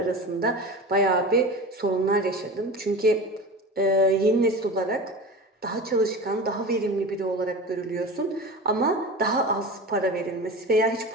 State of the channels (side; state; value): both; normal; correlation 0.31